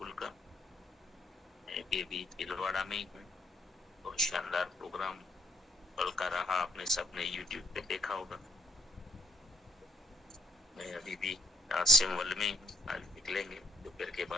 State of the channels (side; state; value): both; normal; correlation 0.68